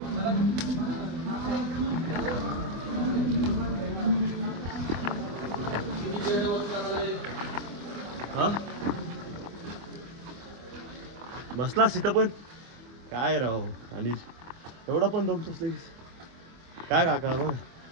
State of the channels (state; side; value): late; left; 24 ms